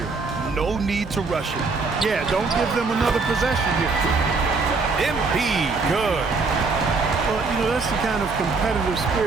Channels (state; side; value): quieter; left; 4.2 dB